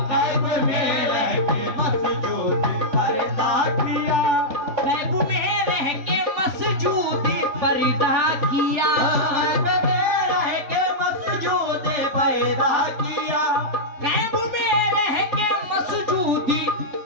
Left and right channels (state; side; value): late; left; 3.4 ms